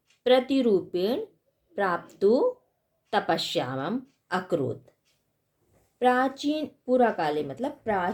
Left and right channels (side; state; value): both; identical; correlation 1.00